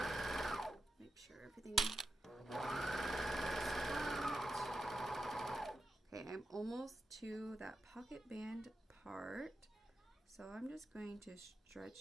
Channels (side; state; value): both; normal; correlation 0.87